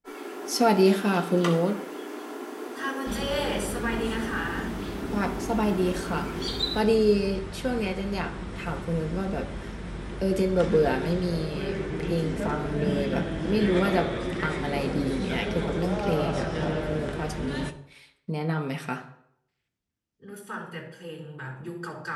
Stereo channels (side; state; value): both; identical; correlation 1.00